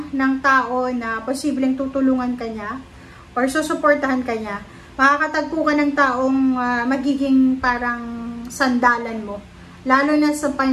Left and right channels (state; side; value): identical; both; correlation 1.00